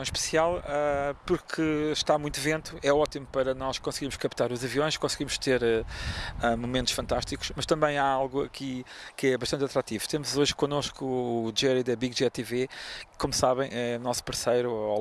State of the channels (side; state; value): both; identical; correlation 1.00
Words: especial porque está muito vento, é ótimo para nós conseguirmos captar os aviões, conseguimos ter momentos fantásticos, mas também há algo aqui que é bastante atrativo. Temos hoje connosco o Dyer da Big Jet TV, que, como sabem, é nosso parceiro ao